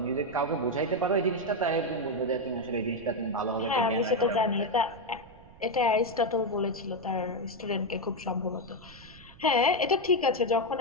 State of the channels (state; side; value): noise; right; rumble, 22 dB below the sound